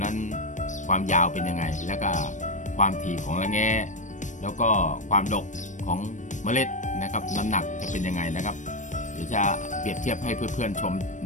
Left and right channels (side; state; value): right; late; 0.36 ms